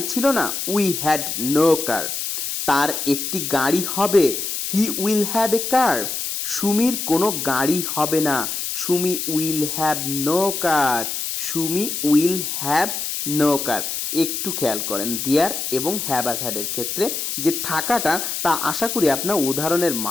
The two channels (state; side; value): noise; left; hiss, 3 dB below the sound